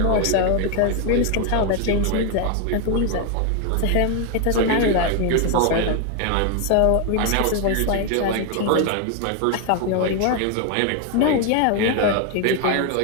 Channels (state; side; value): different; both; correlation 0.01